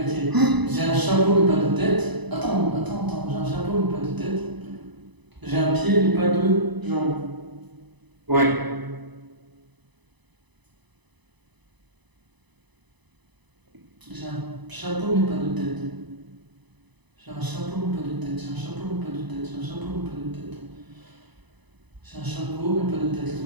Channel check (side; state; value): left; late; 1.0 ms